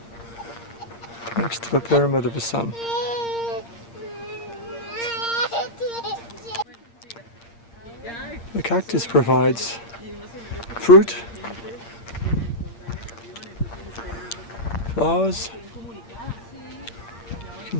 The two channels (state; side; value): late; right; 8.7 ms